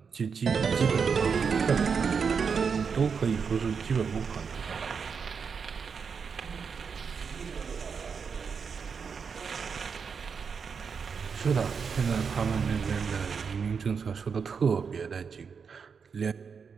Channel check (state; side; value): quieter; left; 6.0 dB